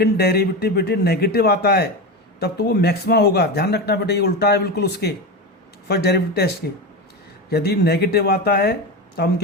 डेरिवेटिव बेटे नेगेटिव आता है तब तो वो मैक्सिमा होगा। ध्यान रखना बेटे, ये उल्टा है बिल्कुल उसके फर्स्ट डेरिवेटिव टेस्ट के। यदि नेगेटिव आता है तो हम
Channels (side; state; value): both; normal; correlation 0.20